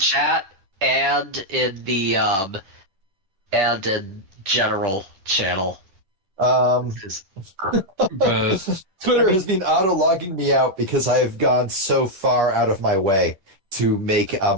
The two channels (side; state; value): left; late; 10 ms